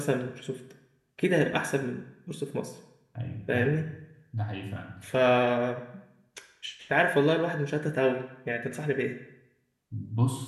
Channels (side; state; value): both; identical; correlation 1.00